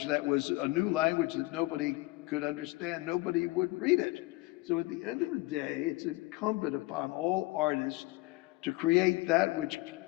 that was a new language that nobody could understand, nobody would read it. So at the end of the day, it's incumbent upon all artists to create that which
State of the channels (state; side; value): quieter; right; 21.4 dB